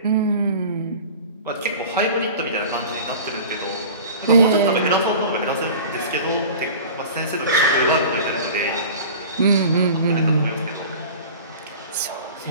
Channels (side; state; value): both; inverted; correlation -0.39